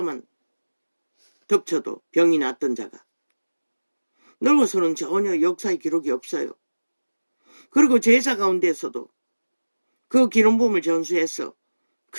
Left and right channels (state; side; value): inverted; both; correlation -1.00